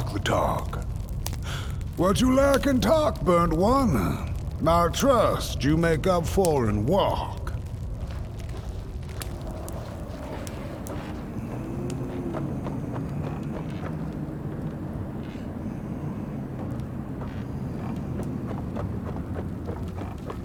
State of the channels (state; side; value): identical; both; correlation 1.00